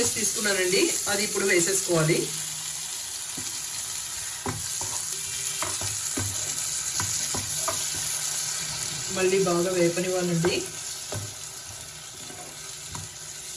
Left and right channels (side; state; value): both; identical; correlation 1.00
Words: తీసుకున్నానండి, అది ఇప్పుడు వేసేసుకోవాలి. మళ్ళీ బాగా వేపనివ్వాలండి.